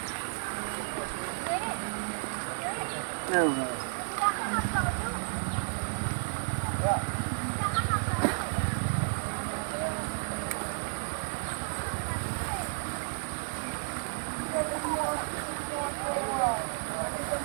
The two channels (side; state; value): left; silent; 56 dB below the other